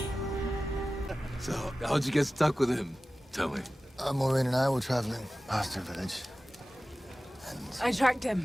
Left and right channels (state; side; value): normal; both; correlation 0.96